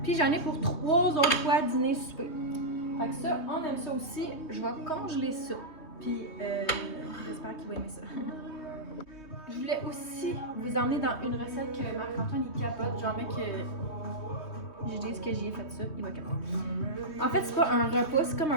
Puis j'en ai pour 3 autres fois dîner, souper. Fait que ça, on aime ça aussi. Je vais congeler ça. Puis j'espère qu'il va aimer ça. Je voulais aussi vous emmener dans une recette que Marc-Antoine il capote. Genre, mec, je dis ce que j'y ai fait ça, il va capoter. En fait, c'est pas un repas, c'est comme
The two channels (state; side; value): late; right; 3.2 ms